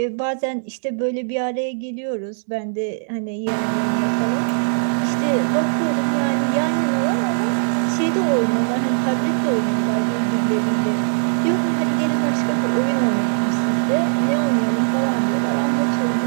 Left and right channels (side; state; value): left; silent; digital silence